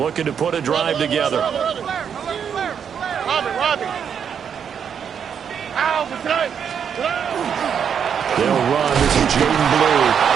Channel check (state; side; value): quieter; left; 7.6 dB